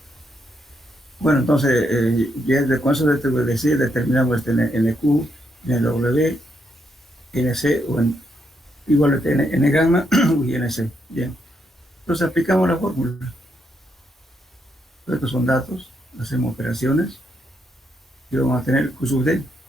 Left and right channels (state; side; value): normal; both; correlation 0.78